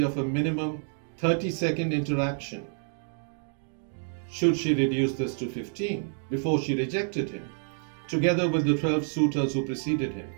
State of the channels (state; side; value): silent; left; 59 dB below the other